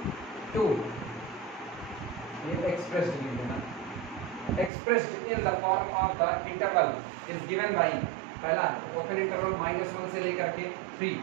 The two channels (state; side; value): drops out; left; at 4.7 s